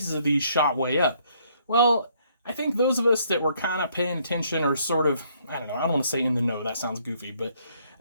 of these shot way up. Well, I think those of us that were kind of paying attention or sort of, I don't know, I don't want to say in the know, that sounds goofy, but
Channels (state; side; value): inverted; both; correlation -0.67